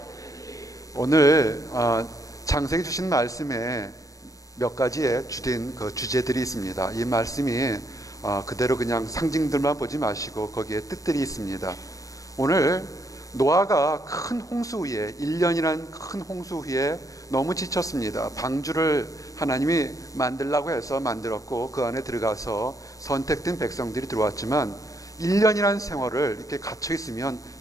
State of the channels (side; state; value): right; late; 0.16 ms